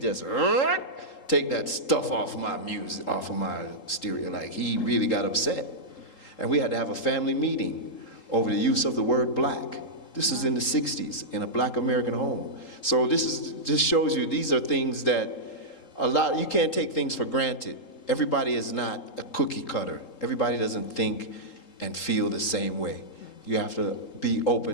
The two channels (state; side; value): late; right; 3.8 ms